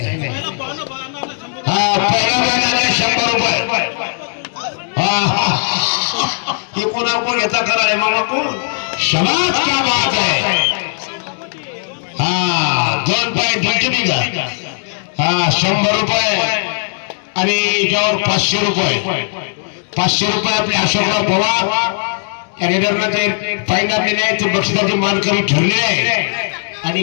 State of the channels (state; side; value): silent; right; digital silence